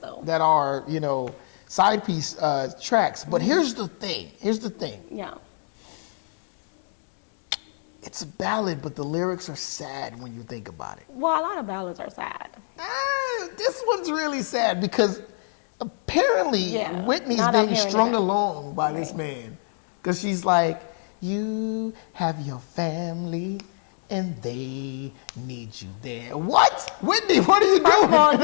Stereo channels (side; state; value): right; silent; digital silence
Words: That are, side piece tracks. But here's the thing. Yeah. It's a ballad, but the lyrics are sad when you think about it. Well, a lot of ballads are sad. This one's really sad because apparently Whitney's being strung along by this man. Because she's like, you have your family and they need you there. What? Whitney, what are you doing? First of all,